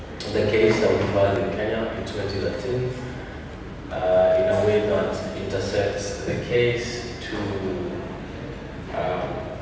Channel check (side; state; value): both; identical; correlation 1.00